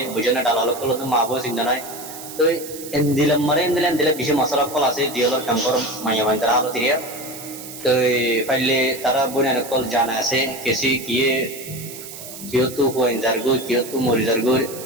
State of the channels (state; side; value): noise; right; hiss, 13 dB below the sound